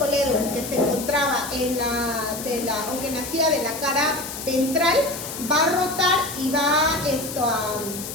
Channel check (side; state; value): left; noise; hiss, 8 dB below the sound